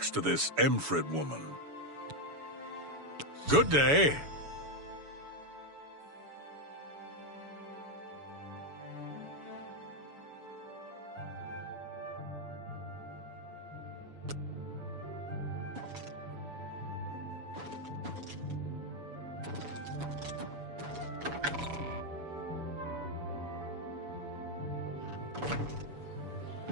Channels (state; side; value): late; left; 7.0 ms